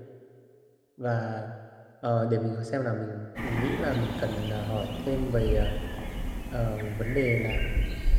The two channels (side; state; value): both; identical; correlation 1.00